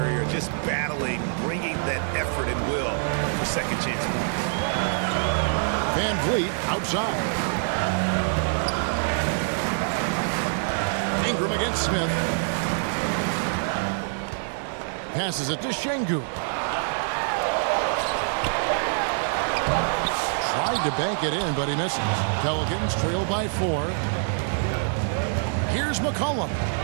just battling, bringing that effort and will for second chance points. Van Vliet outside. Ingram against Smith. Passes it to Şengün. Tried to bank it in, but he misses. Pelicans trail by 4. Here's McCollum.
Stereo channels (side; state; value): left; silent; digital silence